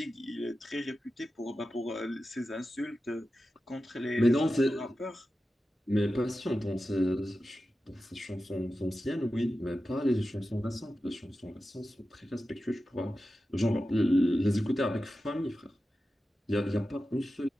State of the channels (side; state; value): both; normal; correlation 0.93